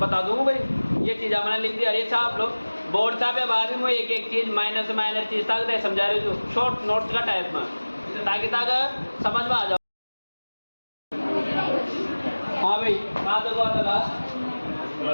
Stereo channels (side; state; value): both; inverted; correlation -1.00